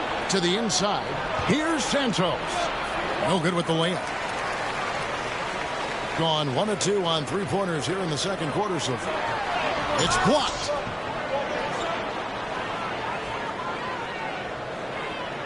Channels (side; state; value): both; identical; correlation 1.00